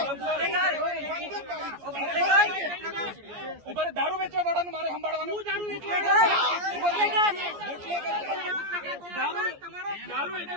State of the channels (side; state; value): left; late; 14 ms